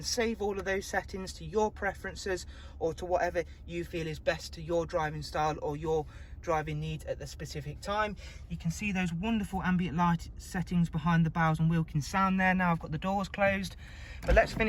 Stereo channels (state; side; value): identical; both; correlation 1.00